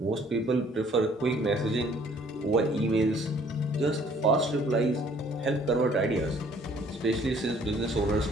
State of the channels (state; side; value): normal; both; correlation 0.58